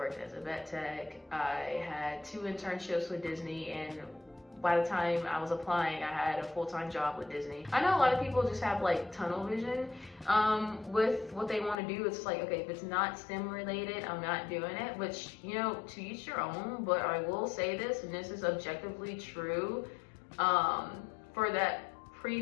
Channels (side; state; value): right; drops out; at 11.8 s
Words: as a vet tech. I had 2 internships with Disney, and by the time I was applying, I had a full-time job with Disney. I know a lot of people just have like tunnel vision with what they want to do. It's like, okay, if it's not STEM related, I'm not doing it, which, you know, to each your own, but I will say this, and this is objectively true, for that